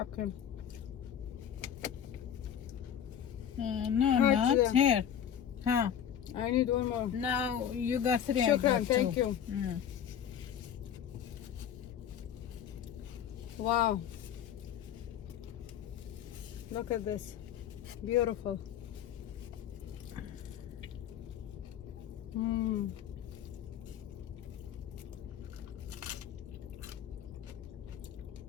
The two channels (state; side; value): quieter; right; 9.2 dB